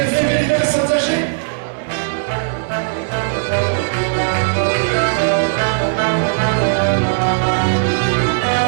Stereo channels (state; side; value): silent; left; 62 dB below the other